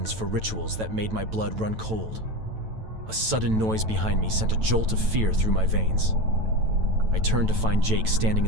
for rituals that made my blood run cold. A sudden noise behind me sent a jolt of fear through my veins. I turned to find Jake standing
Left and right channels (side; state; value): left; late; 9.1 ms